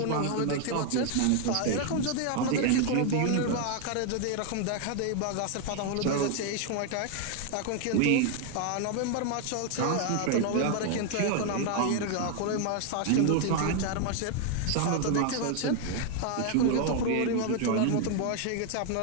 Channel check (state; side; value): different; both; correlation 0.00